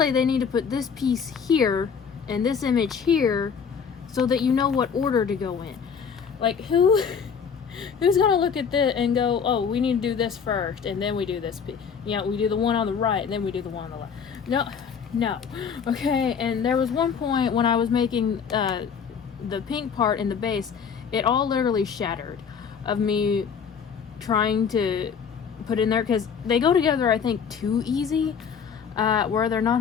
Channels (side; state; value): right; quieter; 6.6 dB